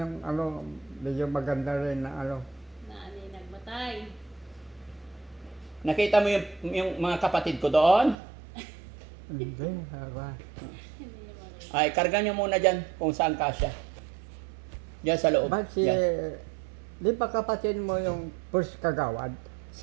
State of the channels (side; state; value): left; drops out; at 8.2 s